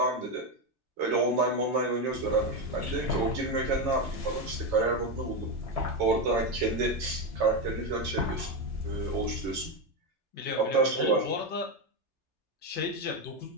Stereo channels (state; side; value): late; left; 3.3 ms